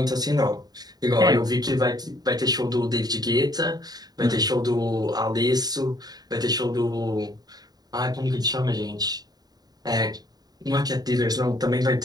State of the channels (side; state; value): left; late; 0.19 ms